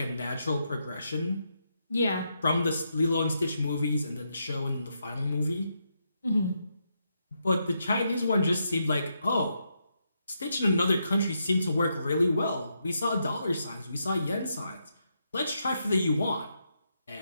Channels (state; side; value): inverted; both; correlation -0.81